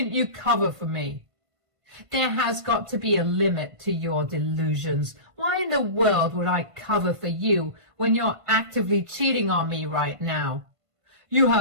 you cover for me? There has got to be a limit to your delusions. Why in the world would I cover for you when you're actively cheating on me right now? You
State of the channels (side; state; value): left; late; 1.5 ms